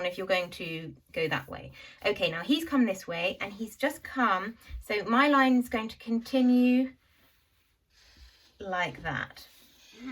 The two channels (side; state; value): both; identical; correlation 1.00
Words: if you're going to go that way. Okay, now he's come this way and he's just come. So my line is going to continue like that.